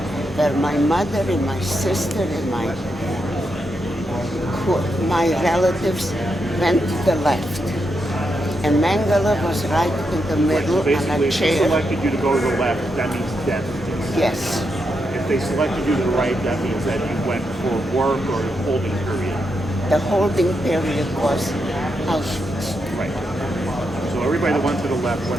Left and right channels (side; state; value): both; normal; correlation 0.83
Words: where my mother and my sister and my relatives went to the left. And Mengele was right in the middle So on basically, a if they chair. selected you to go to the left, that means death. Yes, If they selected you to the right, that means that you went for work or holding period. the holding period was Auschwitz. Right. So everybody that went to the left